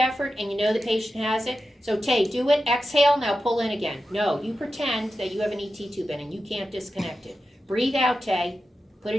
and you know the patient has it. So Tay, do it, exhale, now pull in again. No, you pretend that you have an ET tube in and you can't disconnect it. Breathe out, Tay. Put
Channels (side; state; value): both; normal; correlation 0.91